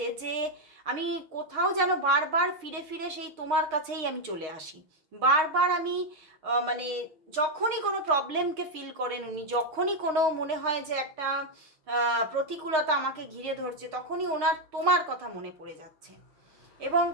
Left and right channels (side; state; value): left; late; 6.4 ms